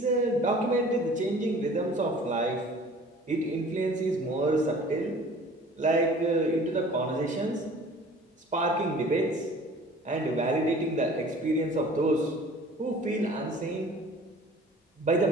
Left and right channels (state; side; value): normal; both; correlation 0.47